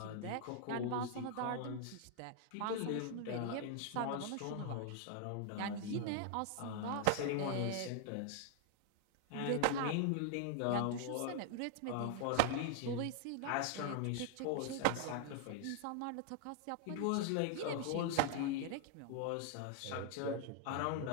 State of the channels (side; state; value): both; different; correlation 0.00